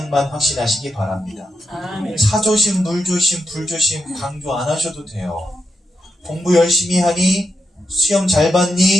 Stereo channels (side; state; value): both; normal; correlation 0.85